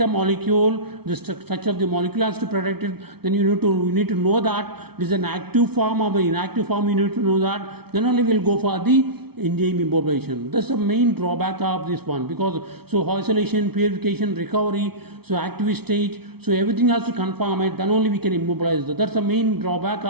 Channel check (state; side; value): late; left; 0.97 ms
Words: molecule, the structure of the molecule has to protect it, then you need to know that this is an active form or an inactive form, you need to know that, then only we will go for the enzyme immobilization. That's the main drawback of this one, because so isolation, purification, recovery, so active state, so everything has to conform it, then only we can immobilize that. That's the main drawback